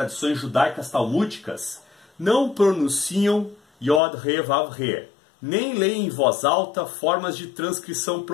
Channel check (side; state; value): right; drops out; at 4.0 s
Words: judaicas talmúdicas, não pronunciam Yod, Re, Vav, Re, nem leem em voz alta formas de transcrição